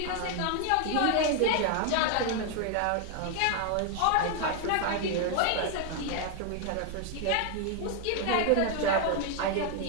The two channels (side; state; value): both; different; correlation 0.00